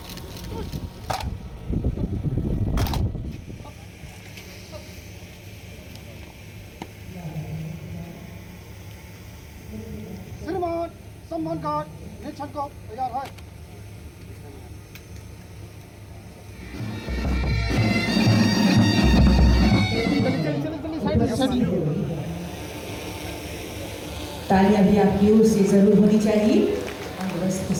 श्रीमान सम्मान कार्ड निरीक्षण को तैयार है। तालियां भी आपकी ओर से जरूर होनी चाहिए। और इसके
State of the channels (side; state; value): both; identical; correlation 1.00